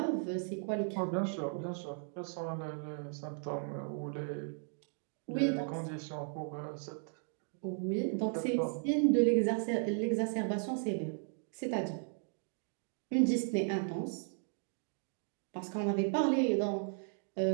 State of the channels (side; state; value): left; silent; 54 dB below the other